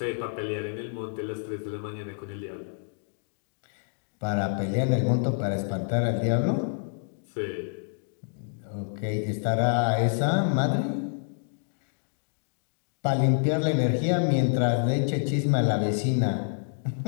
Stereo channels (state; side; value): silent; right; digital silence